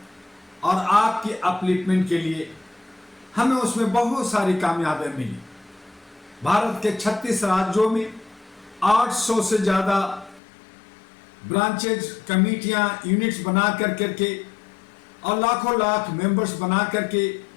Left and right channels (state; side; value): drops out; right; at 10.4 s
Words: और आपकी अपलिफ्टमेंट के लिए हमें उसमें बहुत सारी कामयाबियां मिली। भारत के 36 राज्यों में 800 से ज़्यादा ब्रांचेज, कमेटियां, यूनिट्स बना करके और लाखों लाख मेंबर्स बना करके